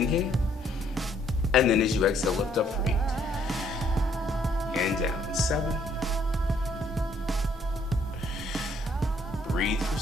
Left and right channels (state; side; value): normal; both; correlation 0.66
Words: And then as you exhale, lift up for 8. And down. 7. Breathe for